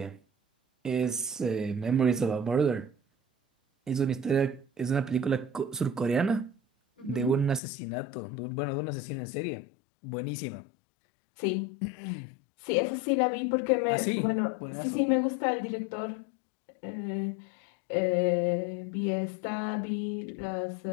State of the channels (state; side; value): drops out; right; at 7.6 s